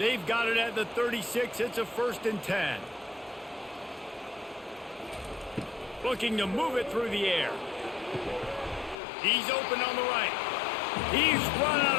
got it at the 36. It's a 1st and 10. Looking to move it through the air. He's open on the right. He's run out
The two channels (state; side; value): drops out; right; at 9.0 s